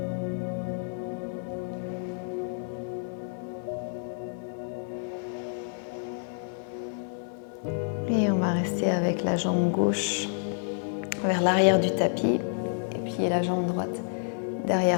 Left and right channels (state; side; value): silent; right; digital silence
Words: Et on va rester avec la jambe gauche vers l'arrière du tapis et puis la jambe droite